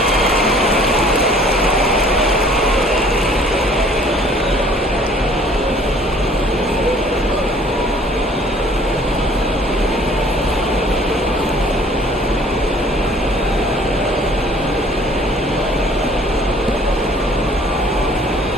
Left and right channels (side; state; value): both; normal; correlation 0.55